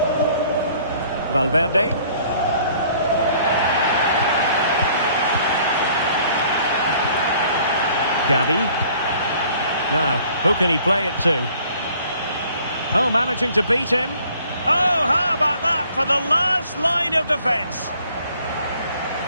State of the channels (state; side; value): inverted; both; correlation -0.57